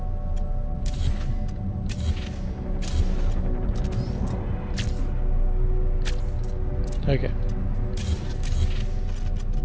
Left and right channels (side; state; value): both; identical; correlation 1.00